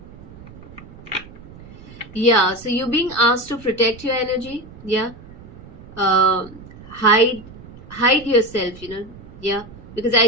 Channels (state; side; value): noise; right; rumble, 18 dB below the sound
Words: Yeah, so you're being asked to protect your energy, yeah. Hide yourself, yeah, because